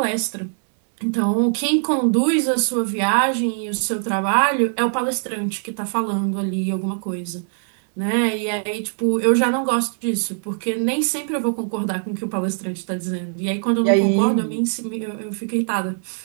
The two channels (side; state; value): left; silent; 64 dB below the other